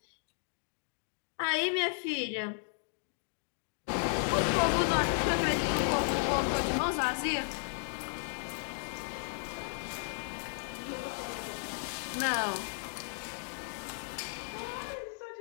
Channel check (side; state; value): right; silent; digital silence